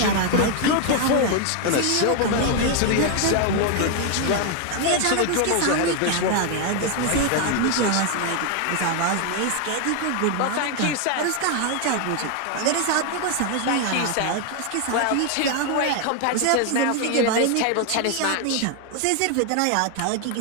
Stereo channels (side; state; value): both; different; correlation 0.01